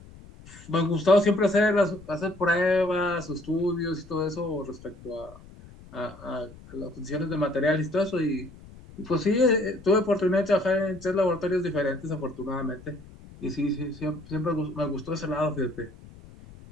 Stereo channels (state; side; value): noise; left; rumble, 20 dB below the sound